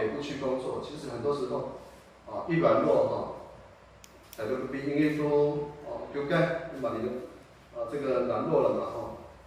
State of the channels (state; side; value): identical; both; correlation 1.00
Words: 部去工作，其实很多时候一软弱在这个比因为说丢盖，把你的这个软弱了嘛